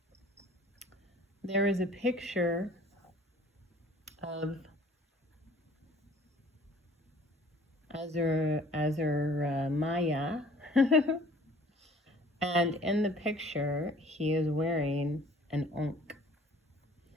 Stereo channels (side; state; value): both; normal; correlation 0.53